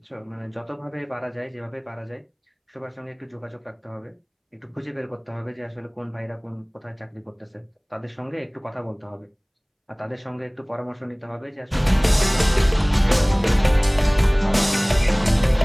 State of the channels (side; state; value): both; identical; correlation 1.00